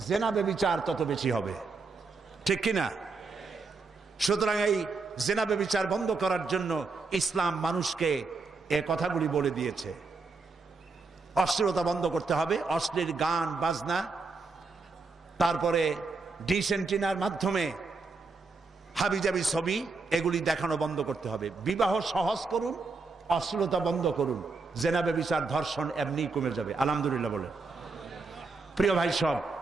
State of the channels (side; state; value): left; quieter; 4.0 dB